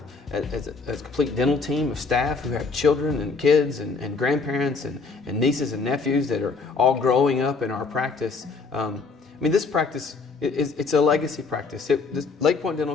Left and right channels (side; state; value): right; quieter; 4.4 dB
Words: as a complete dental team of staff who have children and kids and grandparents and nieces and nephews that are all growing up in our practice. This practice, it's a legacy practice. Lake Point